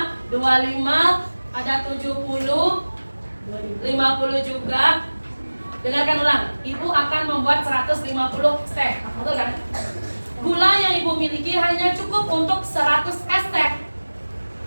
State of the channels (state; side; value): inverted; both; correlation -1.00